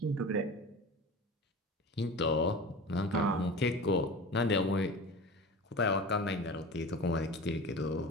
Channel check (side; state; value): both; normal; correlation 0.34